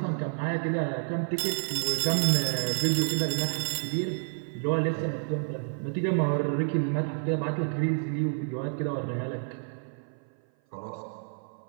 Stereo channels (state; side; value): silent; left; 55 dB below the other